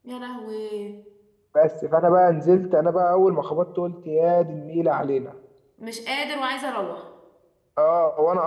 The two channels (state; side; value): identical; both; correlation 1.00